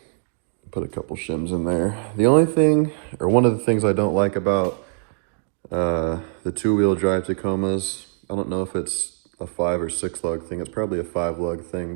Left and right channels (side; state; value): left; quieter; 38.0 dB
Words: put a couple shims in there. The only thing, or one of the things I don't like about the 2-wheel drive Tacomas, I don't know if it's a 5 or 6 lug thing. It's probably a 5 lug